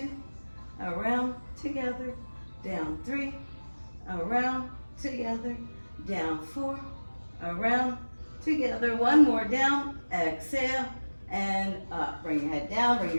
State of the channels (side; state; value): both; inverted; correlation -1.00